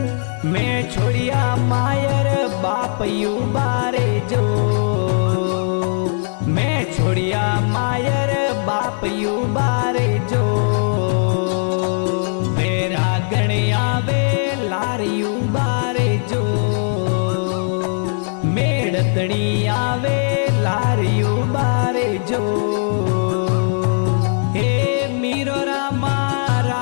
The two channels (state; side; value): silent; right; digital silence